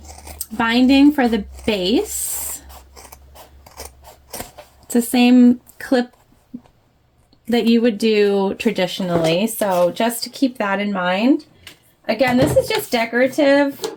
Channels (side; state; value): both; identical; correlation 1.00